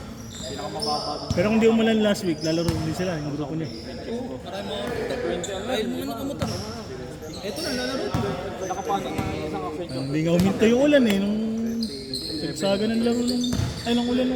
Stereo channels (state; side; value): identical; both; correlation 1.00